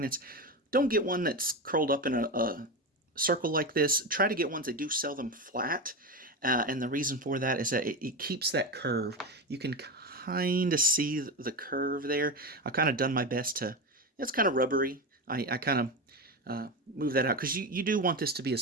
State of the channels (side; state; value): both; normal; correlation 0.18